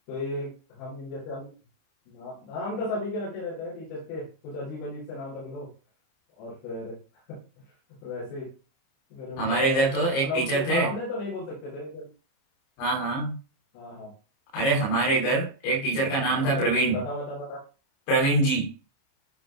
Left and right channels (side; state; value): right; late; 30 ms